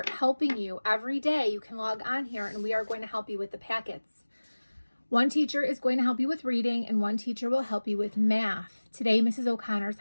helping you every day. You can log on here and we are going to help you with the packets. One teacher is going to help you with reading and one teacher will help you with math. Today, Mrs. O'Connor is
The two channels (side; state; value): both; inverted; correlation -1.00